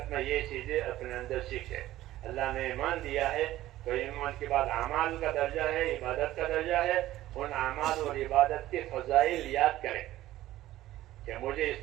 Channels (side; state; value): left; quieter; 14.9 dB